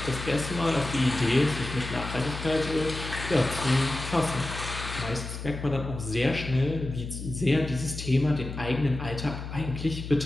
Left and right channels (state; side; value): noise; left; hum, 8 dB below the sound